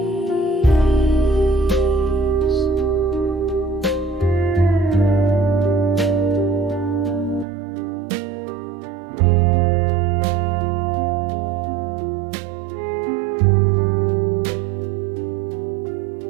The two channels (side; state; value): left; drops out; at 7.5 s